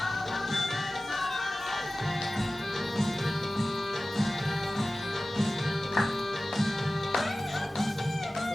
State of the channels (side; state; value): both; normal; correlation 0.96